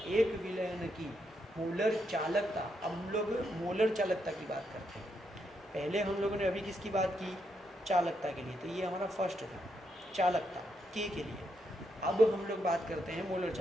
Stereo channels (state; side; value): normal; both; correlation 0.80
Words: एक विलयन की मोलर चालकता, अब हम लोग मोलर चालकता की बात करते हैं। पहले हम लोगों ने अभी किसकी बात की? चालकता के लिए, तो ये हमारा फर्स्ट था, चालकता K के लिए। अब हम लोग बात करते हैं मोलर